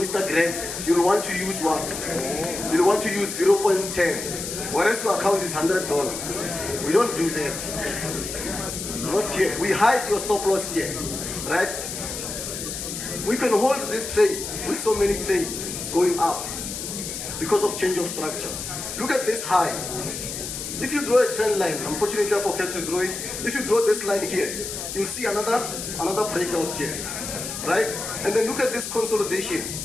you'll want to use what? You'll want to use 0.10. Whereas your account is $100. We don't do that. Not here. We hide your stop loss here. right? We can hold this trade with so many trades going up because of change of structure. Look at this high. If you draw a trend line, unfortunately I forgot to draw it. If you draw this line here, you'll see another breakout here, right? And then look at this consolidation.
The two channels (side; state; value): left; noise; hiss, 6 dB below the sound